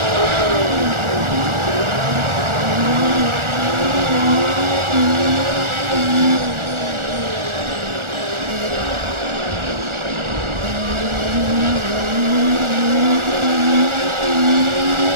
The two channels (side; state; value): left; late; 1.4 ms